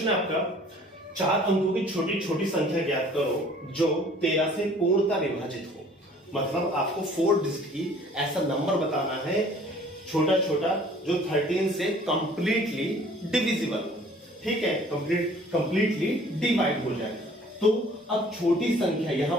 है आपका, 4 अंकों की छोटी छोटी संख्या ज्ञात करो जो 13 से पूर्णतः विभाजित हो। मतलब आपको 4 डिजिट की ऐसा नंबर बताना है छोटा छोटा जो 13 से कंप्लीटली डिविजिबल हो। ठीक है, कंप्लीटली डिवाइड हो जाए। तो अब छोटी संख्या यहां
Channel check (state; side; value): normal; both; correlation 0.53